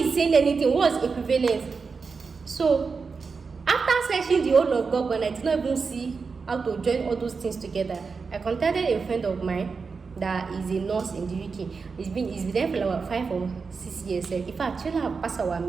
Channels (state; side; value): quieter; left; 4.9 dB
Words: is saying anything. What's equivalent? So after searching the whole of Google, I did not even see how to join all those things together. I contacted a friend of mine that is a nurse in the UK. He's been there for about 5 or 6 years. In fact, I have passed our